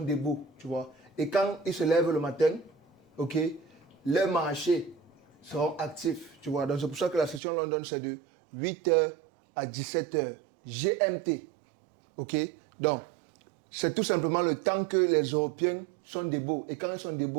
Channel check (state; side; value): drops out; left; at 7.4 s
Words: tu vois. Et quand ils se lèvent le matin, ok, le marché seront actifs, tu vois. Donc c'est pour ça que la session London, c'est de 8h à 17h GMT. Ok? Donc, c'est tout simplement le temps que les Européens sont debout. Et quand ils sont